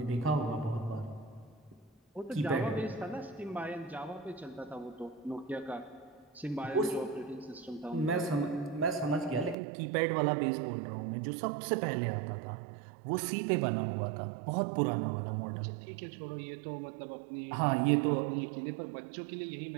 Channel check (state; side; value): drops out; left; at 9.6 s